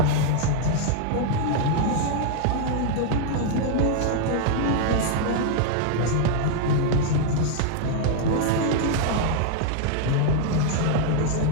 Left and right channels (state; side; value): different; both; correlation 0.00